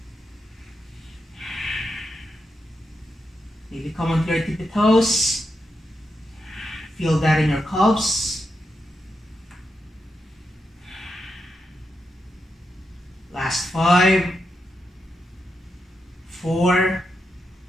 Maybe come onto your tippy toes. Feel that in your calves. Last 5, 4,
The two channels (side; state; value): both; normal; correlation 0.85